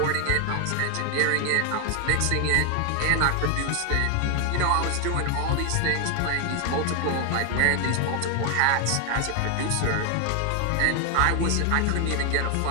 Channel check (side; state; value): both; different; correlation 0.00